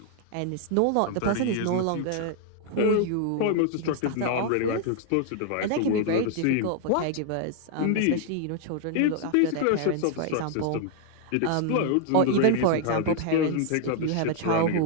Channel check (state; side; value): different; both; correlation 0.00